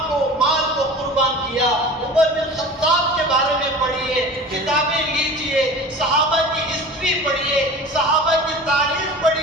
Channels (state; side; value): normal; both; correlation 0.37